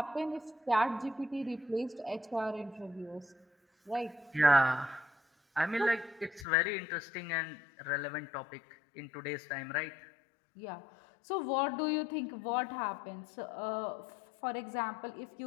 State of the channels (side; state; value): right; drops out; at 6.5 s